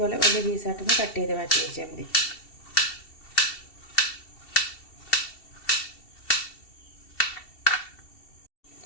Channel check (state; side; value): late; right; 2.7 ms